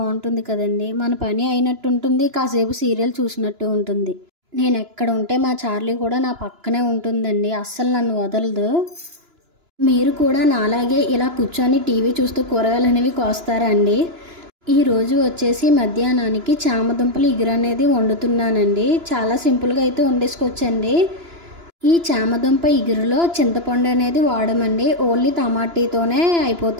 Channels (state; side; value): late; left; 2.9 ms